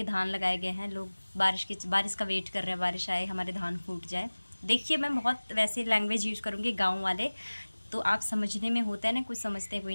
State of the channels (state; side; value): inverted; both; correlation -1.00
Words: धान लगाए गए हैं। लोग बारिश का वेट कर रहे हैं, बारिश आए, हमारे धान फूट जाए। देखिए मैं बहुत वैसे लैंग्वेज यूज़ करूँगी गाँव वाले, तो आप समझने में होता है ना, कुछ समझते हैं कोई